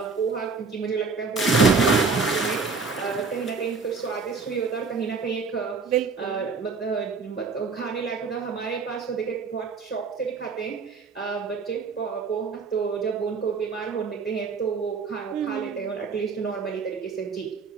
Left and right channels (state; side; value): quieter; left; 4.8 dB